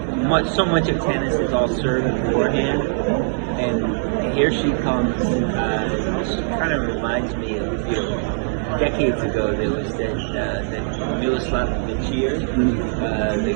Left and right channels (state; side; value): silent; left; 61 dB below the other